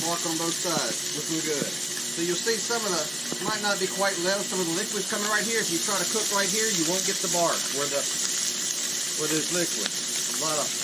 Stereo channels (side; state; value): both; normal; correlation 0.97